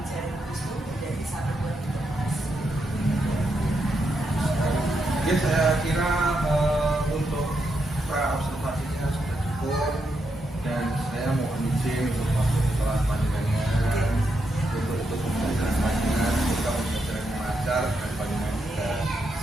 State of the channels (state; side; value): normal; both; correlation 0.82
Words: itu menjadi satu buah informasi. Ya saya kira untuk pra observasinya sudah cukup dan saya mohon izin untuk masuk ke kelas panjenengan untuk pembelajaran panjenengan, semoga pembelajaran yang lancar dan panjenengan juga